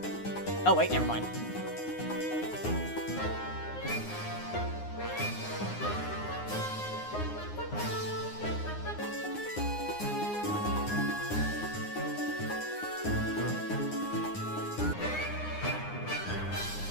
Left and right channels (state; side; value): late; right; 9.7 ms